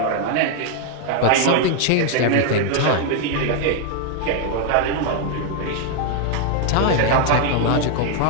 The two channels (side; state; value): both; different; correlation 0.00